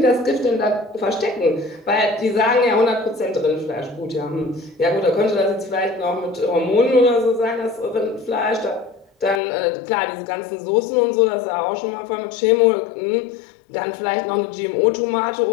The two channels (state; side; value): drops out; right; at 9.4 s